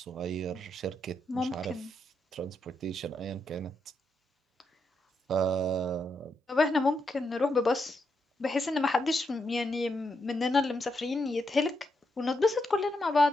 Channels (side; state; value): both; normal; correlation 0.81